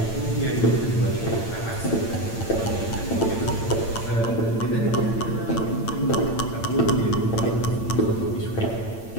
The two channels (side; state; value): right; late; 8.9 ms